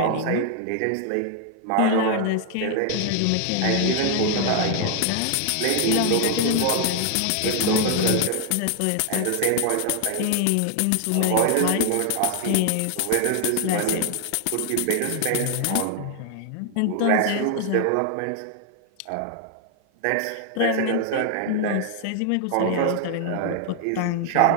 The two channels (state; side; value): different; both; correlation 0.00